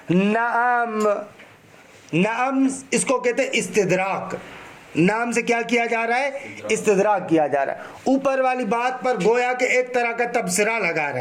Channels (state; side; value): identical; both; correlation 1.00